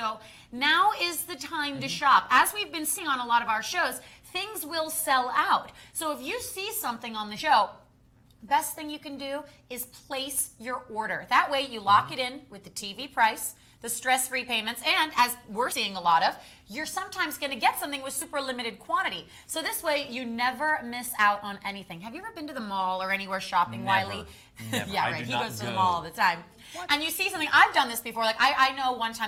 now is the time to shop. As we've been seeing on a lot of our shows, things will sell out. So if you see something on the show, best thing you can do is place your order. That way you lock it in with the TV price, the stress-free payments, and as we're seeing a lot of, you're sometimes going to get something with super limited quantity. So this way you never miss out on anything. Have you ever been to the mall or anywhere shopping, Wiley? Never. Yeah, right. He goes to the mall all the time. What? And you see something. I've done this before. Like I know one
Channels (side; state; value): both; identical; correlation 1.00